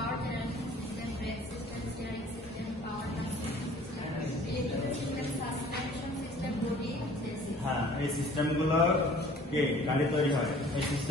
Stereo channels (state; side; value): normal; both; correlation 0.50